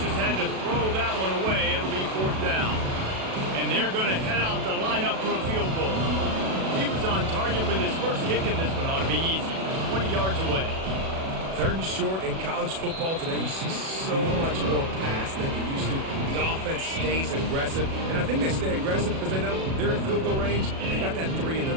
had to throw that one away. It'll be 4th down. And they're going to head out to line up for a field goal. He was on target with his first kick, and this one ought to be easy from 20 yards away. 3rd and short in college football today, you see so much more pass than you used to. The offense stays aggressive, and I think they stay aggressive because they know they're in field goal range. They got that 3 in their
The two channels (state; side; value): late; left; 37 ms